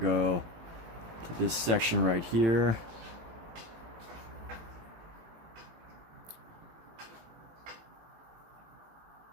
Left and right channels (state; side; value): late; left; 18 ms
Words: to this section right here.